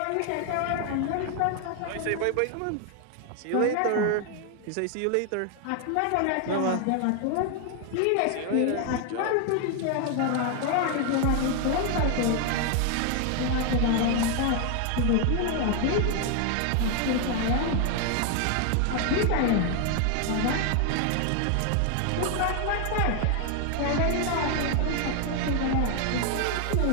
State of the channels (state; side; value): different; both; correlation 0.01